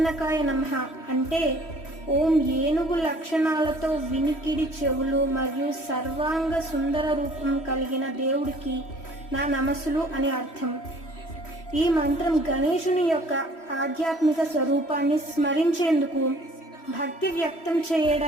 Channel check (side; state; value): right; late; 3.1 ms